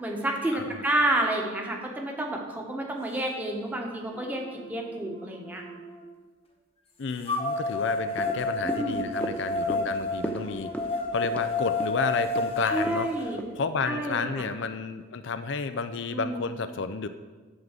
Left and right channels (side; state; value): both; normal; correlation 0.28